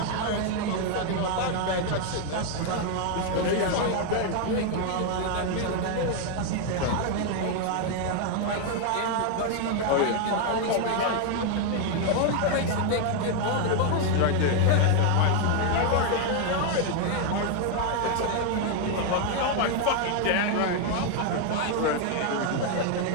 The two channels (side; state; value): both; different; correlation 0.01